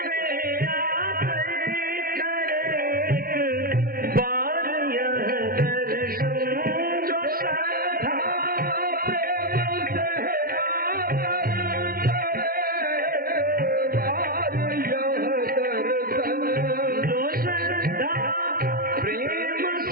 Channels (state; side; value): late; left; 0.43 ms